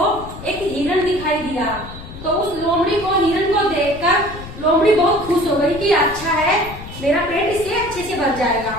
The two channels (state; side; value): noise; left; rumble, 13 dB below the sound